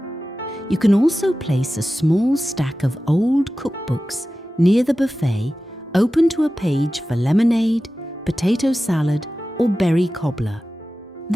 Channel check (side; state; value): both; normal; correlation 0.95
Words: You can also place a small stack of old cookbooks near the buffet, open to a page for lemonade, potato salad, or berry cobbler.